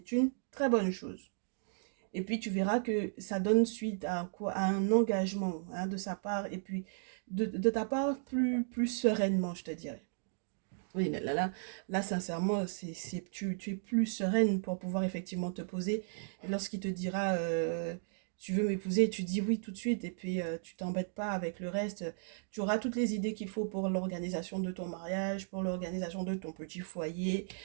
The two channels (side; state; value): left; silent; digital silence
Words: une très bonne chose. Et puis tu verras que ça donne suite à quoi, à un engagement hein, de sa part et puis de ta part plus sereinement, je te dirais. Oui, là sincèrement, tu es plus sereine pour pouvoir effectivement te poser. Et lorsqu'il te dira, tu veux m'épouser, tu dis oui tout de suite et puis tu t'embêtes pas avec le reste. Tu auras toutes les idées qu'il faut pour l'organisation de ton mariage, pour l'organisation de ton petit foyer.